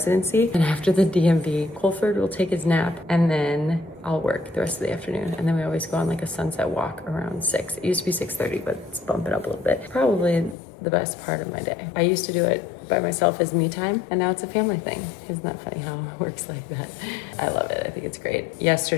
And after the DMV, Colford will take his nap, and then I'll work the rest of the afternoon. And then we always go on like a sunset walk around 6. It used to be 6:30, but it's bumping up a little bit. Probably the best part of my day. I used to do it by myself as me time, and now it's a family thing. Isn't that funny how it works like that? I love it. I think it's great.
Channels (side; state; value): right; drops out; at 10.6 s